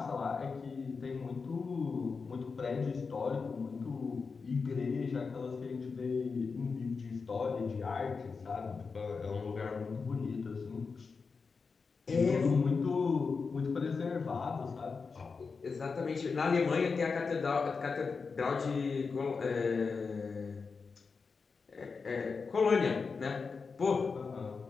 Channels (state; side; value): quieter; right; 4.9 dB